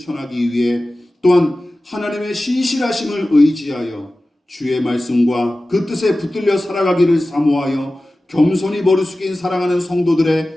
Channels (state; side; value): normal; both; correlation 0.96